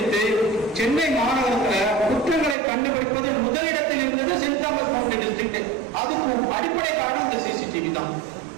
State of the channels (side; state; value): left; drops out; at 2.6 s